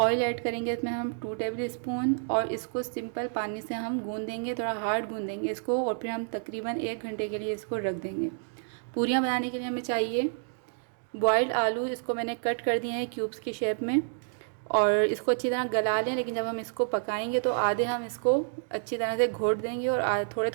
ऐड करेंगे इसमें हम 2 टेबल स्पून, और इसको सिंपल पानी से हम गूंद देंगे, थोड़ा हार्ड गूंद देंगे इसको, और फिर हम तकरीबन 1 घंटे के लिए इसको रख देंगे। पूरियाँ बनाने के लिए हमें चाहिए बॉयल्ड आलू, इसको मैंने कट कर दिए हैं क्यूब्स की शेप में, और इसको अच्छी तरह गला लें। लेकिन जब हम इसको पकाएंगे तो आधे हम इसको अच्छी तरह से घोट देंगे और थोड़े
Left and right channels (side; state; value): left; silent; digital silence